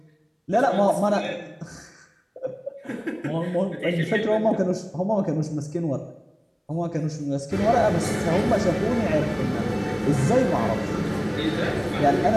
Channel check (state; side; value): identical; both; correlation 1.00